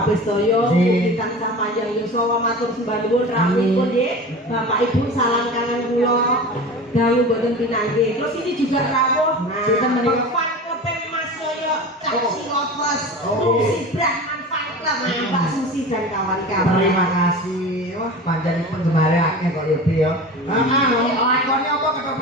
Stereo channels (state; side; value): normal; both; correlation 0.33